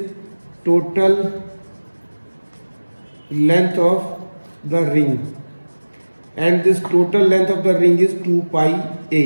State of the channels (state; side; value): inverted; both; correlation -1.00